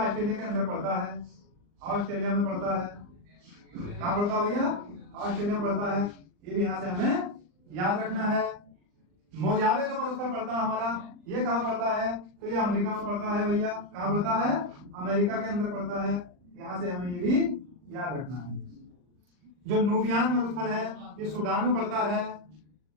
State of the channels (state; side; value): late; left; 39 ms